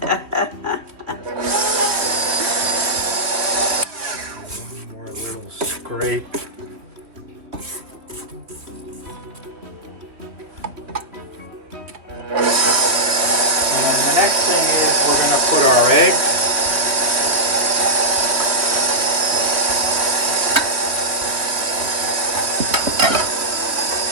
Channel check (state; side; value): late; left; 3.1 ms